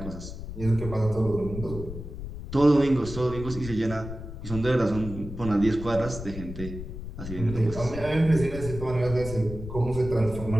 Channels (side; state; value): left; noise; rumble, 9 dB below the sound